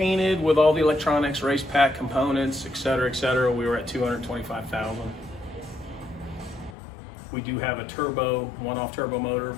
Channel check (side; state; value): right; drops out; at 6.8 s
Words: with all the electronics, race pack components, et cetera, we were at $225,000. We do have a turbo, one-off turbo motor,